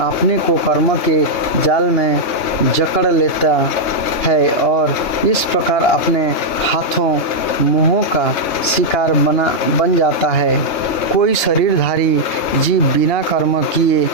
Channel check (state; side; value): late; right; 2.8 ms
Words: को कर्म के जाल में जकड़ लेता है और इस प्रकार अपने हाथों मुँहों का शिकार बन जाता है। कोई शरीरधारी जीव बिना कर्म किए